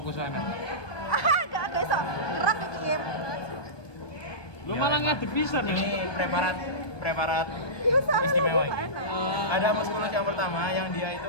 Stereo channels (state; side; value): late; right; 1.2 ms